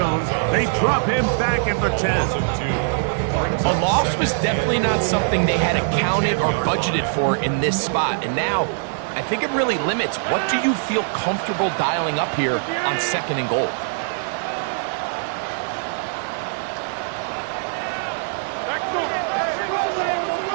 They drop him back at the 10. A loss was definitely not something they had accounted or budgeted for in this spot. And now, I think it really limits. What do you feel comfortable dialing up here on second and goal?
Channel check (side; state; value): left; silent; digital silence